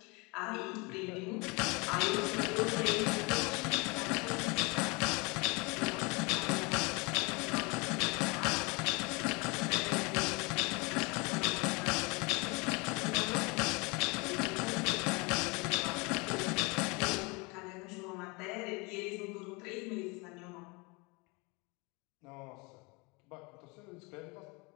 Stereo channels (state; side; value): quieter; right; 28.0 dB